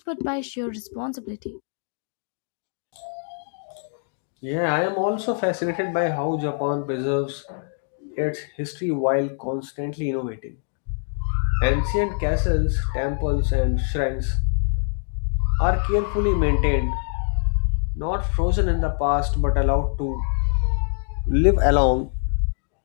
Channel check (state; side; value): silent; right; digital silence